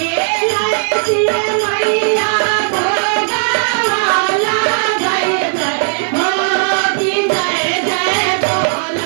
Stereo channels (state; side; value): silent; left; 61 dB below the other